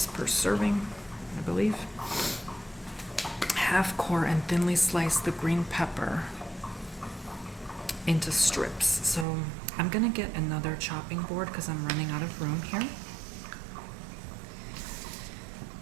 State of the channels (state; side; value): drops out; left; at 9.2 s